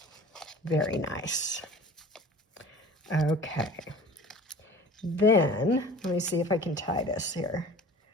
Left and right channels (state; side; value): normal; both; correlation 0.43